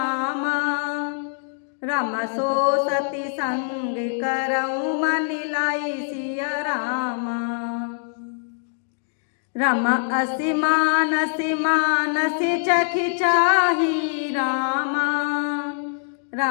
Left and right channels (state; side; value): silent; right; digital silence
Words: राम सो सती संग करऊँ मन लाई सिया रामा। राम असी मानस चखि चाही रामा,